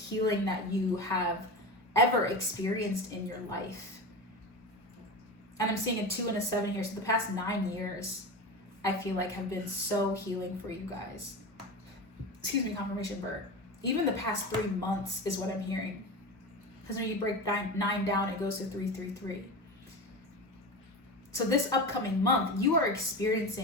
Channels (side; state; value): both; normal; correlation 0.26